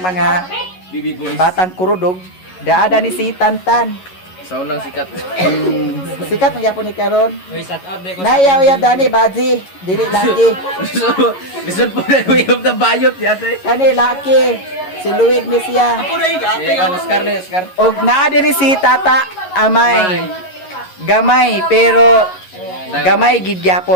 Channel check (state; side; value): late; right; 11 ms